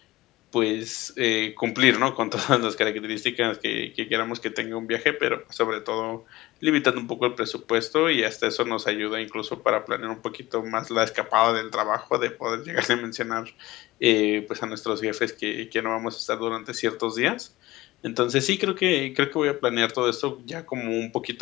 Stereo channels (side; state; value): right; quieter; 18.7 dB